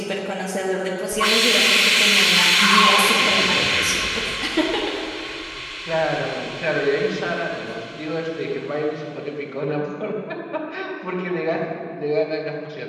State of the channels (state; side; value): identical; both; correlation 1.00